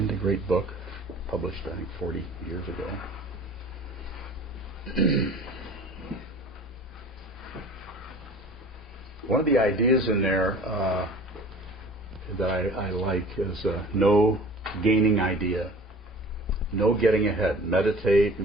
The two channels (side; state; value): both; normal; correlation 0.45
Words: a great book, published I think 40 years ago. One of the ideas in there that I like is no gaining idea, no getting ahead. Meditate.